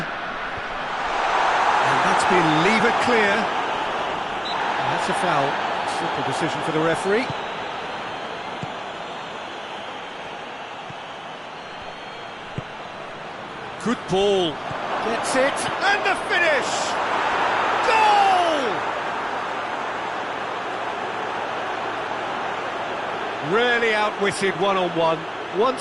And that's been levered clear. And that's a foul. Simple decision for the referee. Good ball. Gets it. And the finish! Goal! Really outwitted one-on-one.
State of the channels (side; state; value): both; identical; correlation 1.00